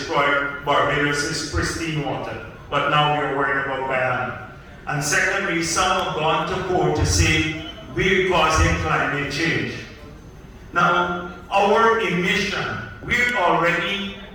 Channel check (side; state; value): both; identical; correlation 1.00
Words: Barbados' pristine water. But now we're worried about Guyana. And secondly, some have gone to court to say we're causing climate change. Now, our emission, we're already